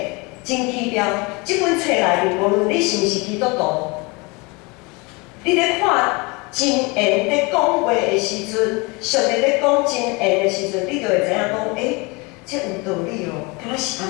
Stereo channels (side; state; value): right; quieter; 27.3 dB